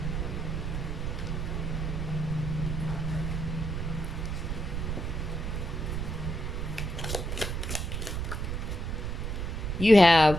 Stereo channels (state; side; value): noise; right; rumble, 2 dB below the sound